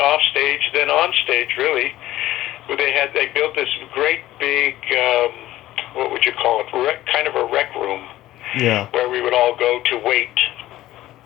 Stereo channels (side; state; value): right; quieter; 15.2 dB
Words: stage than on stage, really. They built this great big, what would you call it, kind of a rec room, where we would all go to wait